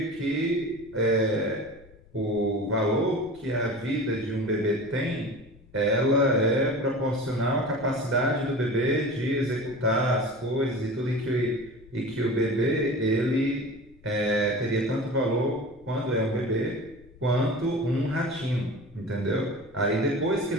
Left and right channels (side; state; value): left; noise; rumble, 24 dB below the sound